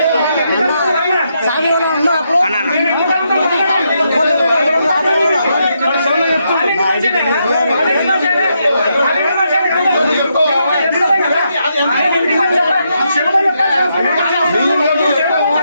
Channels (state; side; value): inverted; both; correlation -0.80